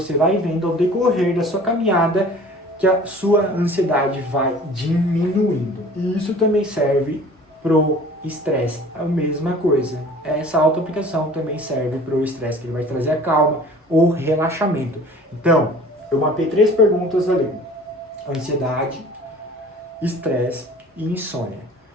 vai vendo ao decorrer da sua caminhada que a sua ansiedade vai diminuindo. E isso também serve pro estresse. É a mesma coisa. Essa auto-aplicação também serve pro estresse, que ele vai trazer a calma ou relaxamento. Então, eu mapeei 3 perguntas ali. Ansiedade, estresse e insônia.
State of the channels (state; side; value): normal; both; correlation 0.46